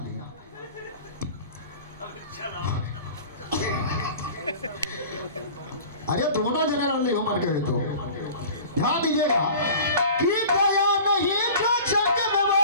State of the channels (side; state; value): both; inverted; correlation -0.41